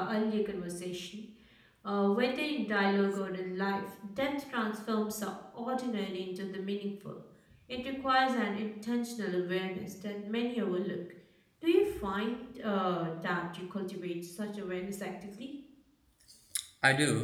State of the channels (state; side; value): identical; both; correlation 1.00